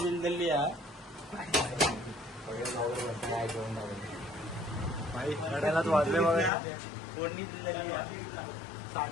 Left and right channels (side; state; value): right; drops out; at 6.5 s